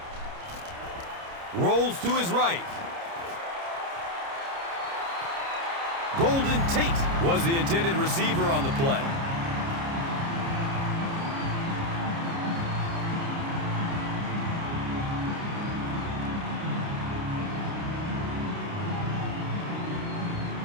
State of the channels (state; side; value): late; left; 29 ms